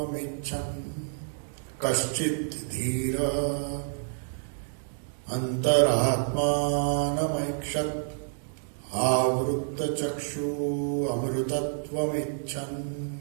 Ichcham Kaschit Dhira Antaratmanamakshat Avrutta Chakshu Amrutatvam Ichchan.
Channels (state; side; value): silent; left; digital silence